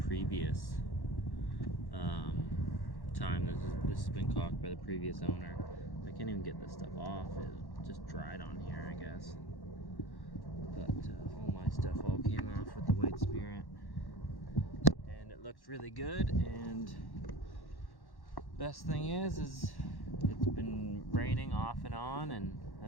time. This has been caulked by the previous owner. I can't even get this stuff off. It just dried on here, I guess. But all my stuff all came off with the white spirit. it looks really good, and best thing is it's been raining off and on, and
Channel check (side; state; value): right; late; 1.1 ms